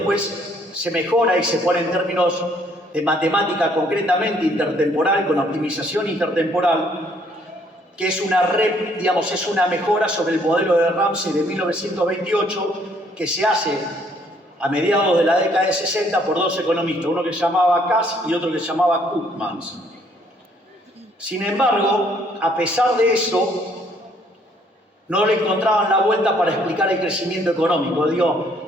se mejora y se pone en términos de matemática concretamente intertemporal, con optimización intertemporal, que es es una mejora sobre el modelo de Ramsey de 1928, que se hace a mediados de la década de 60 por 2 economistas, uno que se llamaba Cass y otro que se llamaba Koopmans. Sin embargo, a pesar de eso, no le encontraban la vuelta para explicar el crecimiento económico.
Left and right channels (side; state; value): both; normal; correlation 0.65